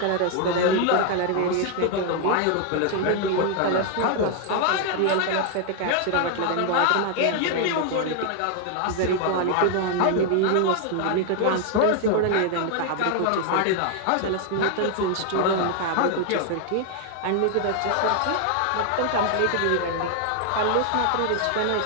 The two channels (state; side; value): different; both; correlation 0.00